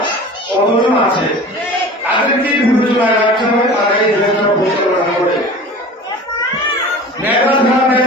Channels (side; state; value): both; normal; correlation 0.38